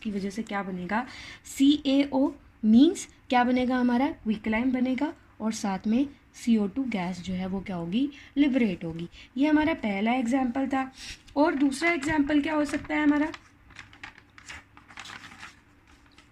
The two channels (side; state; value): both; identical; correlation 1.00